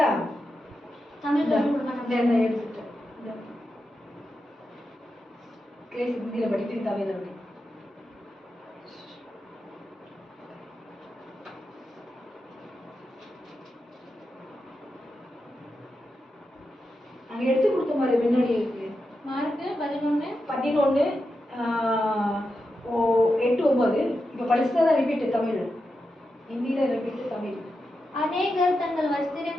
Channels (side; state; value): both; normal; correlation 0.88